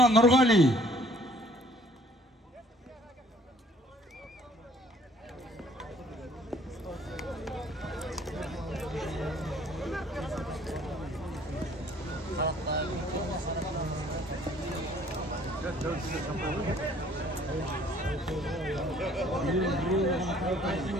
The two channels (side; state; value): both; normal; correlation 0.58